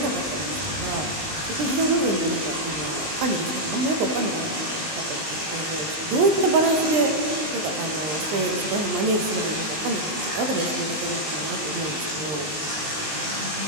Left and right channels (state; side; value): late; left; 19 ms